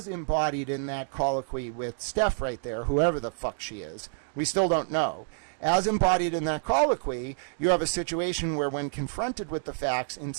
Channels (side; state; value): left; silent; digital silence